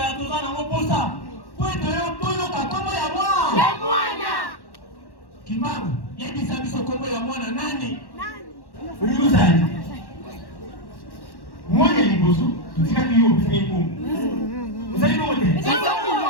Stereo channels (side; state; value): right; late; 1.1 ms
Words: tozana moposa. Pweto yo toyoka kombo ya mwana. Ya mwana. Kimbangu. Yebisa biso kombo ya mwana nani? Uyuzani. Mwana liboso. Tutika kiyo bisa ikungu. Uzali bote.